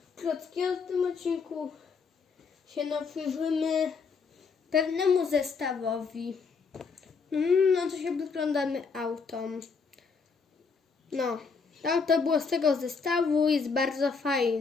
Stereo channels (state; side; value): quieter; right; 5.1 dB